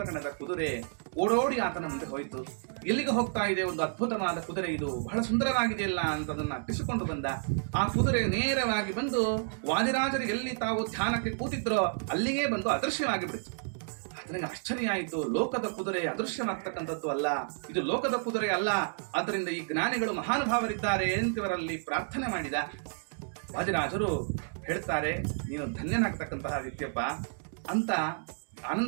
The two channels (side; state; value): left; silent; digital silence